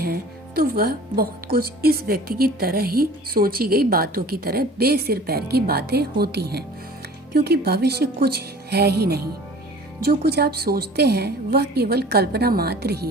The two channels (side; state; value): both; normal; correlation 0.45